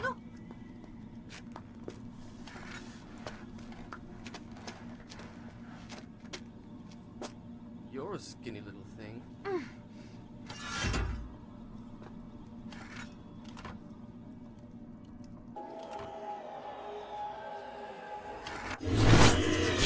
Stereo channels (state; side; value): identical; both; correlation 1.00